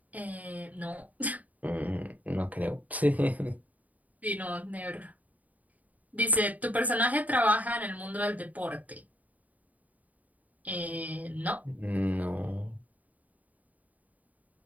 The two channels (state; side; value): late; left; 0.074 ms